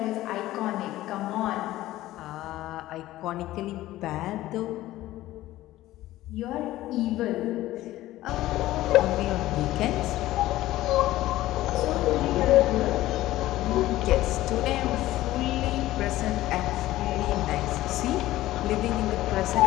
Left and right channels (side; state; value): right; quieter; 15.7 dB